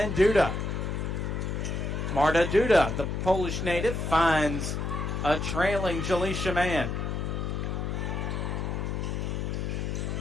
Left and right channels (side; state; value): left; noise; hum, 2 dB below the sound